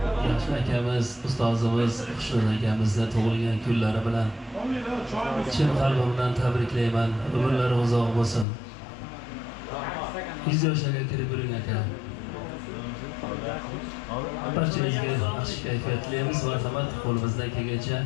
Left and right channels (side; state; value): right; drops out; at 8.5 s